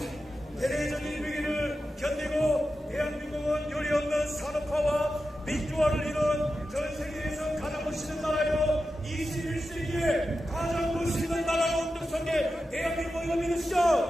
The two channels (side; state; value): both; normal; correlation 0.91